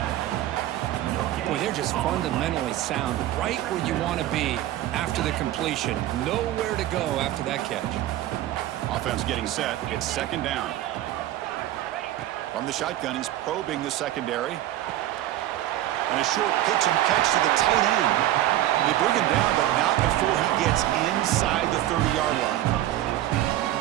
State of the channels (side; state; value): left; quieter; 13.9 dB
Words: Boy, they're just fundamentally sound, right where you want to be after the completion. Nowhere to go after that catch. Offense getting set. It's second down. From the shotgun, he's probing the secondary. And a short pitch and catch to the tight end. They bring him down, but not before he gets inside the 30-yard line.